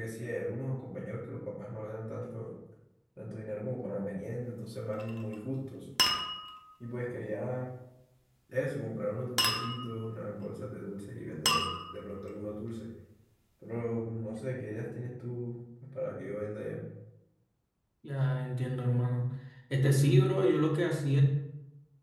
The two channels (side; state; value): both; identical; correlation 1.00